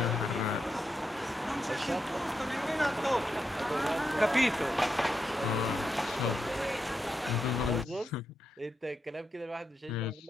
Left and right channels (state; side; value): normal; both; correlation 0.85